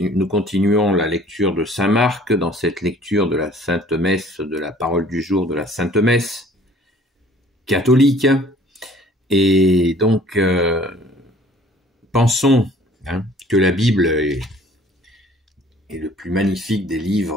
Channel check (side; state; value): both; normal; correlation 0.53